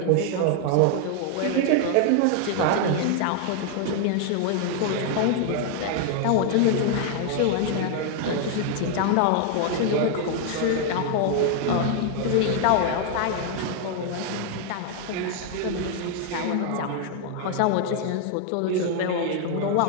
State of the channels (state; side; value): different; both; correlation 0.00